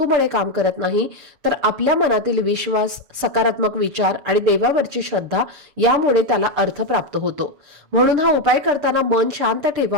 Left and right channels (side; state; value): left; late; 6.7 ms